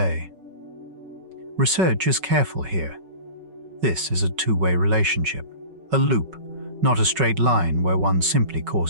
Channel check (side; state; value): left; late; 5.4 ms